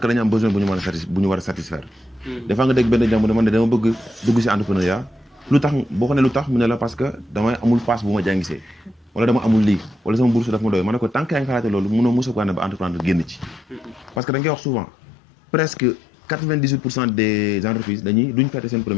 dañu am besoin bu ñu war a satisfaire des fois nga dégg benn jàmm man de dama bëgg dugg ci entrepreneuriat lu tax boo ko ne lu tax mu ne la parce que damay amul passe bu ma jàngisee wala dama amul lii wala sama bourse daf ma doy ma ne ko tant que yaa ngi xalaate loolu mënoo mos a ko ne ba entreprendre génn ci parce que da nga koy wax souvent presque 98% des entreprises duñ fêter seen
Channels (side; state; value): right; drops out; at 14.2 s